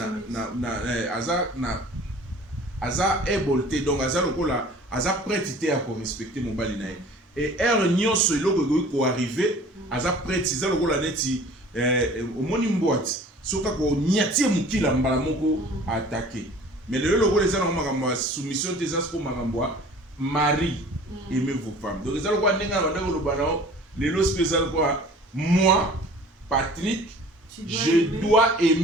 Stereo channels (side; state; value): both; normal; correlation 0.47